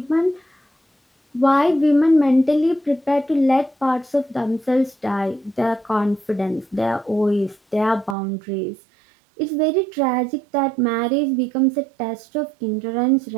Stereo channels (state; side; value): drops out; left; at 8.2 s